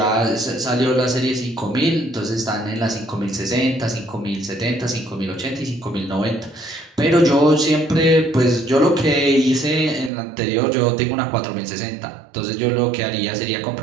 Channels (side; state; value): left; drops out; at 10.1 s